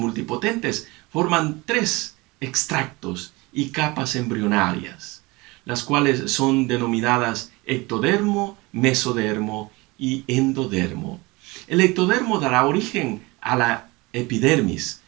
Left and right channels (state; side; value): quieter; left; 23.6 dB